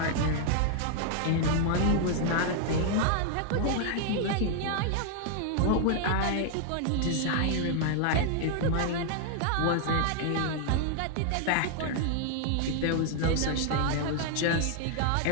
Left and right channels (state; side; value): different; both; correlation 0.00